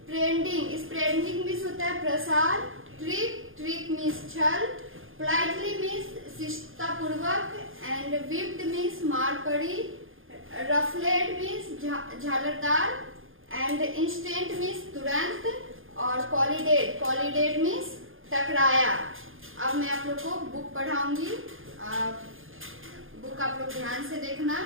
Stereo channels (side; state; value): left; late; 0.59 ms